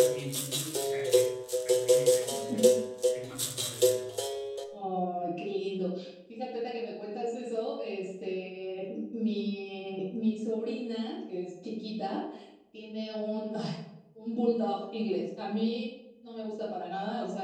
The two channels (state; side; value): identical; both; correlation 1.00